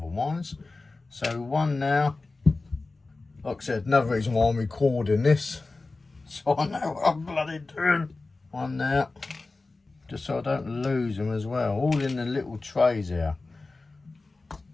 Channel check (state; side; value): quieter; right; 3.5 dB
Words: So one now. Like I said, another reason why I'm recording this. So I know what I'm bloody doing. One now. Just so I don't lose them as well. All in the little trays here.